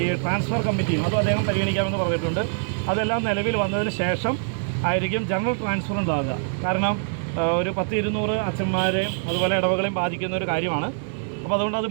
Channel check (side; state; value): left; silent; digital silence